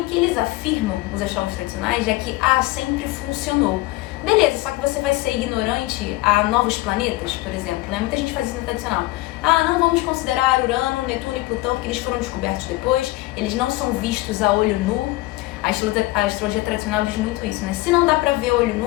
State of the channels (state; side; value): quieter; right; 19.1 dB